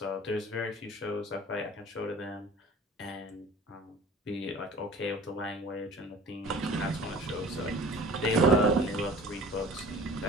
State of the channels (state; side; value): normal; both; correlation 0.44